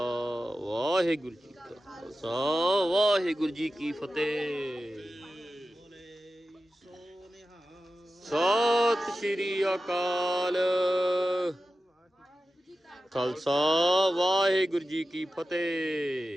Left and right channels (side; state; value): both; normal; correlation 0.93